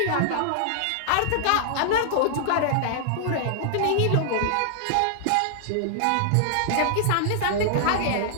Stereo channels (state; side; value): different; both; correlation -0.01